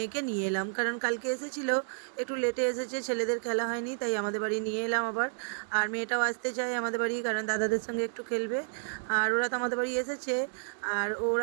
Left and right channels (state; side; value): silent; left; digital silence